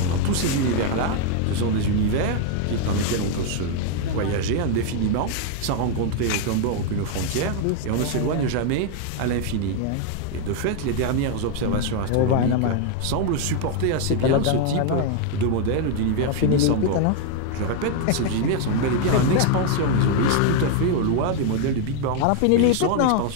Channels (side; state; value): both; different; correlation 0.00